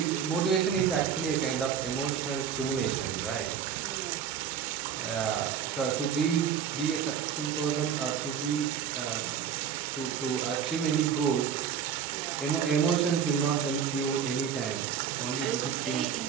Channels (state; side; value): quieter; left; 7.9 dB